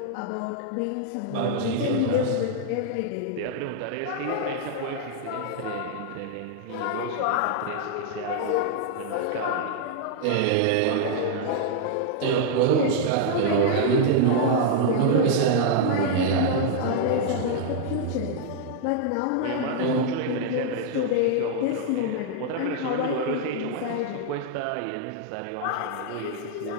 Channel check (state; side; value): different; both; correlation -0.01